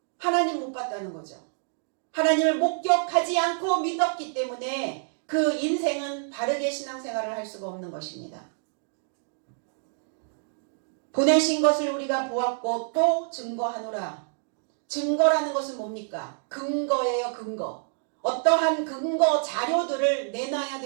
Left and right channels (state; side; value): silent; left; digital silence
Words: 하나님 못 봤다는 거죠. 하나님을 목격하지 않고 믿었기 때문에 그 인생은 바르게 신앙생활을 할 수가 없는 것입니다. 보내신 것을 우리가 보았고 또 증거하노라. 증거라는 것은 뭡니까? 근거예요, 근거. 어떠한 근거 자료들을 내놔야